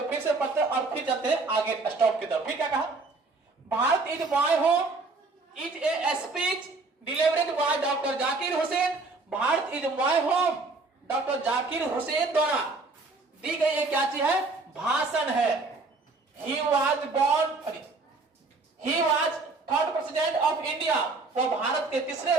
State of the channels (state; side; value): quieter; left; 3.6 dB